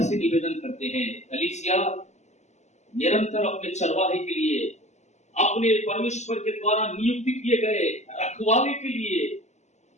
से निवेदन करते हैं। कलीसिया निरंतर अपने चरवाहे के लिए, अपने परमेश्वर के द्वारा नियुक्त किए गए रखवाले के लिए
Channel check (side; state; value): right; late; 0.33 ms